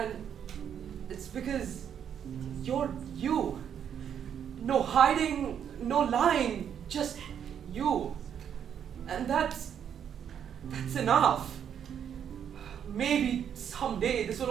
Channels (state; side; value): quieter; left; 8.6 dB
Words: it's because you're you. No hiding, no lying, just you. And that's enough. Maybe someday this will